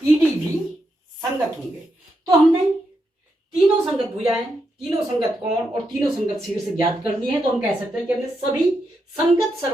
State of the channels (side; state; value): both; normal; correlation 0.83